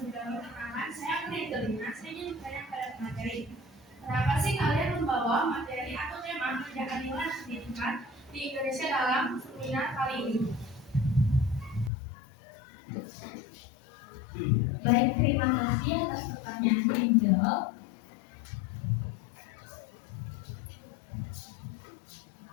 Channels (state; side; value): drops out; right; at 11.9 s